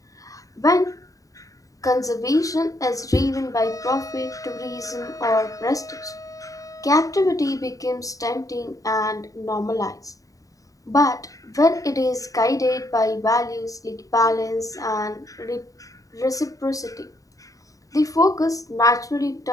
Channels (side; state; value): right; late; 0.16 ms